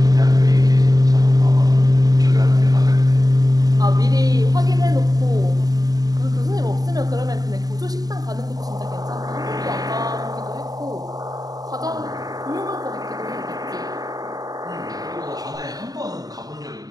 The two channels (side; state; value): left; late; 0.18 ms